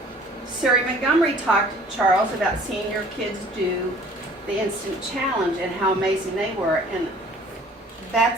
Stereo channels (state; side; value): normal; both; correlation 0.52